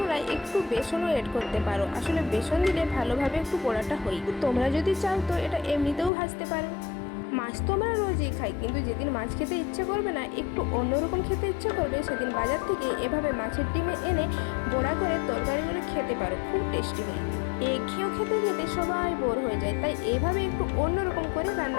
একটু বেসনও এড করতে পারো। আসলে বেসন দিলে ভালোভাবে একটু বড়াটা হয়। তোমরা যদি চাও তো এটা এমনিতেও ভাজতে পারো। মাছ তো আমরা রোজই খাই, কিন্তু যেদিন মাছ খেতে ইচ্ছে করবে না, একটু অন্যরকম খেতে ইচ্ছে করবে, সেদিন বাজার থেকে এভাবে মাছের ডিমে এনে বড়া করে তরকারিগুলো খেতে পারো। খুব টেস্টি হয়। খেয়েও খেতে খেতে সবাই বোর হয়ে যায়, তাই এভাবে একটু অন্যরকম করে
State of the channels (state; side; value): drops out; right; at 6.1 s